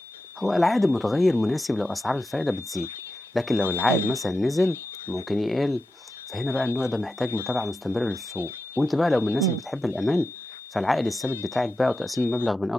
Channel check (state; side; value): normal; both; correlation 0.90